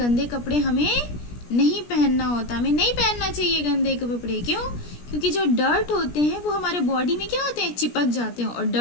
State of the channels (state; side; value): late; right; 17 ms